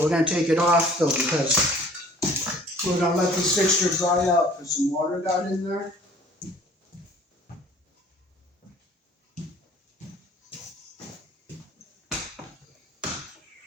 we're going to take it off though because we're going to let this fixture dry out because some water got in there.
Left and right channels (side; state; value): both; normal; correlation 0.52